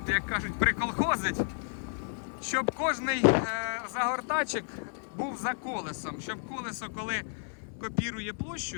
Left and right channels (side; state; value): right; silent; 57 dB below the other